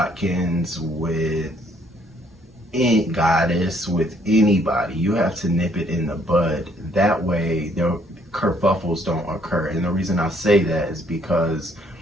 with Goddess, with anybody. You have to nip it in the bud. That way their kerfuffles don't occur. And the reason I say that is because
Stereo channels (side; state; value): both; normal; correlation 0.65